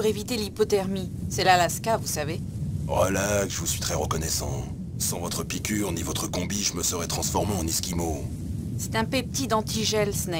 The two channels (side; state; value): both; identical; correlation 1.00